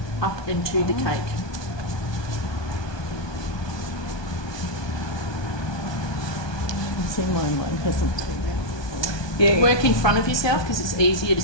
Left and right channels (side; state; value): right; late; 1.2 ms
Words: into the cake. See mine hasn't. Yeah. Work in front of yourself because it's easier to